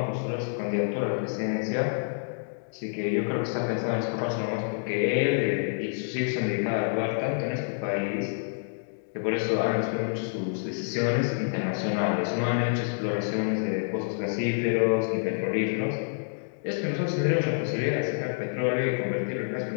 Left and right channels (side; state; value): right; silent; digital silence